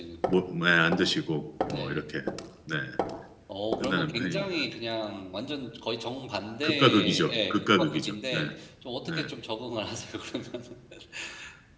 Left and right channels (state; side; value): identical; both; correlation 1.00